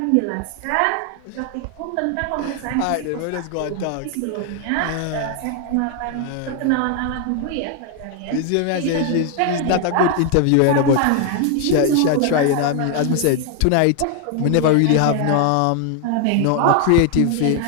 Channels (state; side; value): different; both; correlation 0.00